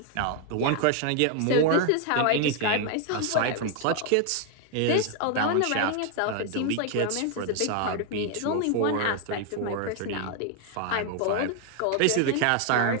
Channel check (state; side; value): different; both; correlation 0.00